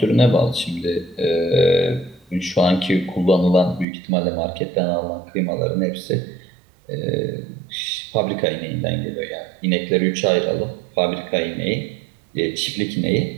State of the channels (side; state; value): left; drops out; at 3.9 s